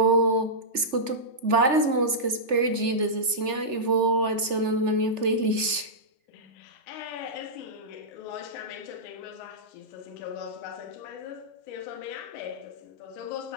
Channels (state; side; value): late; left; 3.4 ms